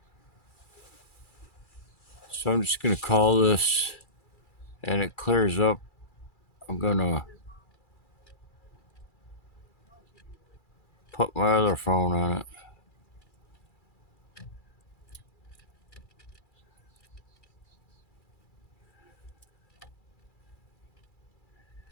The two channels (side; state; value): right; late; 2.3 ms